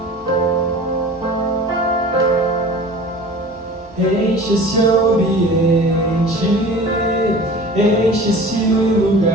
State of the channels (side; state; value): both; normal; correlation 0.41